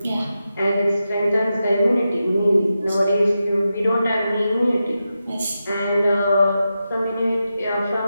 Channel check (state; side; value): inverted; both; correlation -0.90